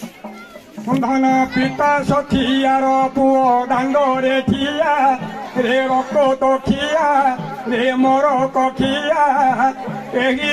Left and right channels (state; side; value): identical; both; correlation 1.00